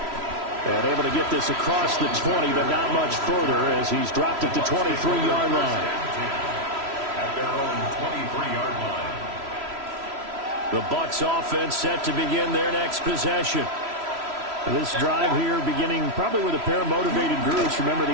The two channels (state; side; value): late; left; 3.0 ms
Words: And able to get this across the 20, but not much further as he's dropped it to 23-yard line. At their own 23-yard line. The Bucs offense set to begin their next possession. This drive here beginning probably with a pair of motivated groups. Remember,